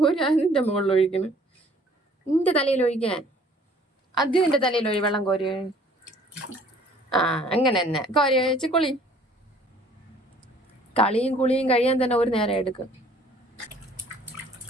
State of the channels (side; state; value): both; normal; correlation 0.56